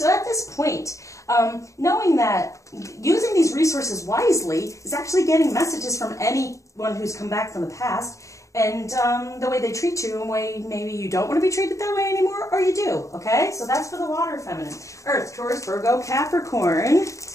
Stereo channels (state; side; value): late; right; 0.15 ms